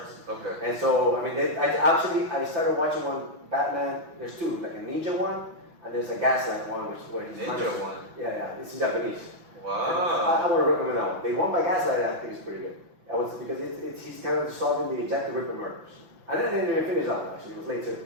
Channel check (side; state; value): left; late; 5.9 ms